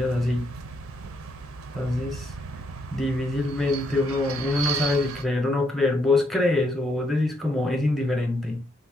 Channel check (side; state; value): both; normal; correlation 0.75